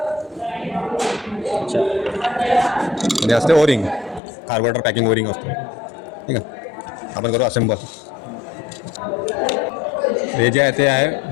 अच्छा. आणि असते ओरिंग, कार्बोरेटर पॅकिंग ओरिंग असतो. ठीक आहे, आपण करू असेंबल. हे जे आहे ते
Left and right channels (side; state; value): right; drops out; at 4.2 s